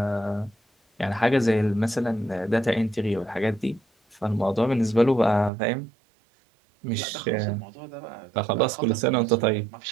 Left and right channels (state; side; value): drops out; left; at 5.5 s